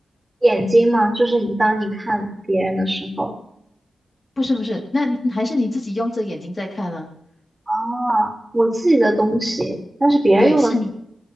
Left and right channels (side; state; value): both; normal; correlation 0.96